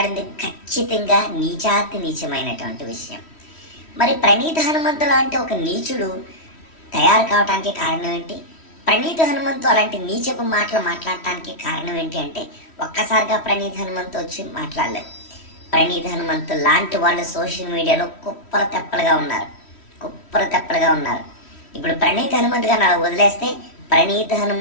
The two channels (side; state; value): right; late; 3.1 ms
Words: ఖచ్చితంగా నీచాతి నీచమైనటువంటి విషయం. మరి ప్రణీత్ హనుమంతు లాంటి ఒక నీచుడు తయారు కావడానికి కారణం ఏంటి? ప్రణీత్ హనుమంతు అలాంటి నీచపు మాటలు మాట్లాడటానికి కారణం ఏంటి అంటే ఒక్కసారిగా ప్రణీత్ హనుమంతు వచ్చి మాట్లాడలేదు. ప్రణీత్ హనుమంతు లాంటి వాళ్ళు సోషల్ మీడియాలో కుప్పర తెప్పలుగా ఉన్నారు. ఇప్పుడు ప్రణీత్ హనుమంతు గారిని అలా వదిలేస్తే ప్రణీత్